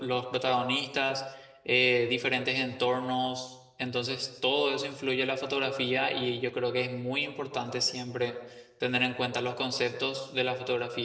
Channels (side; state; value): both; identical; correlation 1.00